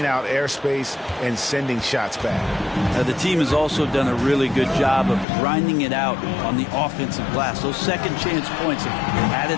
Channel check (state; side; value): drops out; right; at 5.2 s